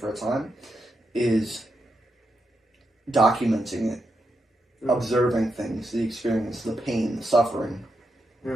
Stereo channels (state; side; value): normal; both; correlation 0.84